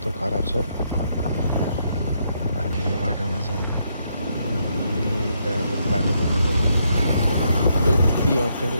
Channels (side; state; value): both; inverted; correlation -0.76